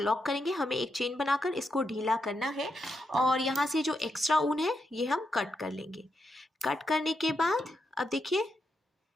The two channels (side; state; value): both; normal; correlation 0.83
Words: करेंगे। हमें एक चेन बनाकर इसको ढीला करना है और यहाँ से जो एक्स्ट्रा ऊन है ये हम कट कर लेंगे। कट करने के बाद अब देखिए